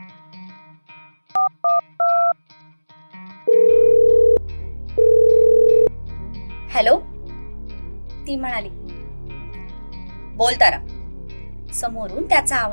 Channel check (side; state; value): both; inverted; correlation -1.00